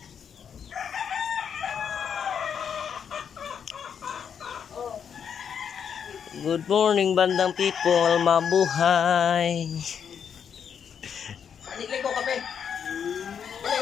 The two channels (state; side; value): quieter; right; 7.6 dB